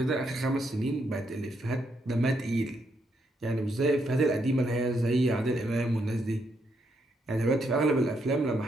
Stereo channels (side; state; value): both; normal; correlation 0.77